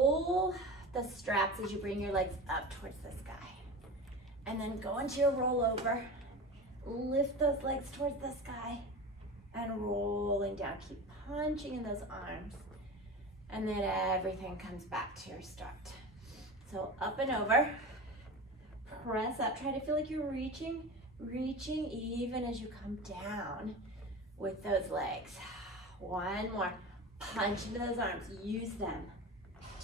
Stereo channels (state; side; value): normal; both; correlation 0.30